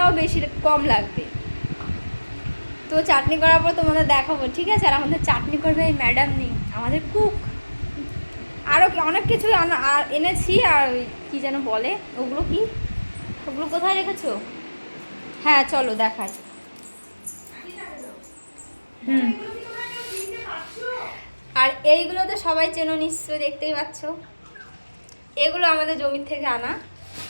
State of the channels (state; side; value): inverted; both; correlation -1.00